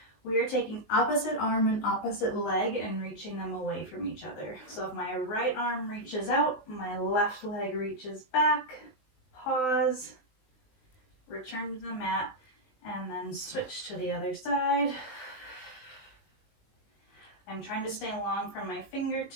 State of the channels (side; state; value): right; late; 19 ms